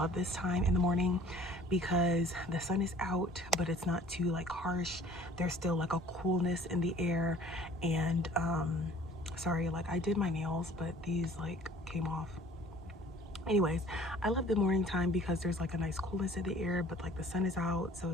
this time in the morning because the sun is out, but it's not too like harsh. There's still like a coolness in the air, and sorry, like I did my nails, but these like came off. Anyways, I love the morning time because there's like a nice coolness in the air, but like the sun is out, so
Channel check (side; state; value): both; normal; correlation 0.52